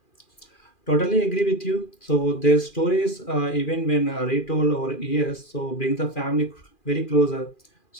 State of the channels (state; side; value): late; right; 2.4 ms